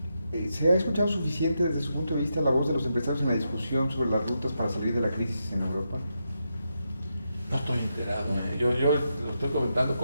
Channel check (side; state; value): both; inverted; correlation -0.85